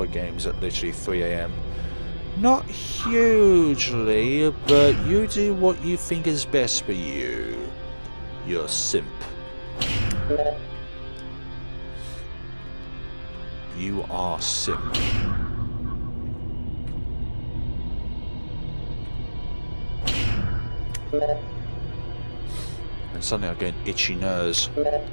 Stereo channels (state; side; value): inverted; both; correlation -1.00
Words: games at literally 3 AM. Not hugely, but you do what you think is best for you. You're a simp. You are simp. And suddenly I get itchy nose,